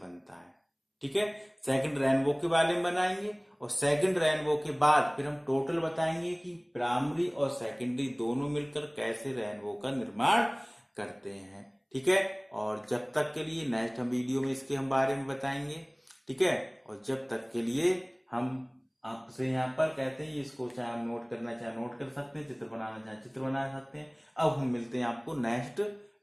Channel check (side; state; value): both; identical; correlation 1.00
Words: है, ठीक है। सेकंड रेनबो के बारे में बनाएंगे, और सेकंड रेनबो के बाद फिर हम टोटल बताएंगे कि प्राइमरी और सेकेंडरी दोनों मिलकर कैसे रेनबो का निर्माण करते हैं, ठीक है। और जब तक के लिए नेक्स्ट हम वीडियो में इसके हम बारे में बताएंगे, ठीक है। और जब तक के लिए हम आपसे यहाँ पर कहते हैं, इसको चाहे हम नोट करना चाहे नोट कर सकते हैं, चित्र बनाना चाहे चित्र बना सकते हैं। अब हम मिलते हैं आपको नेक्स्ट